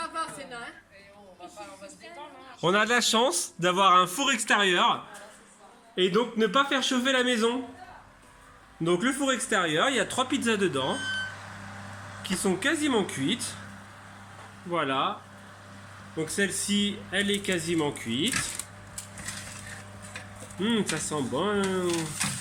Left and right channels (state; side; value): identical; both; correlation 1.00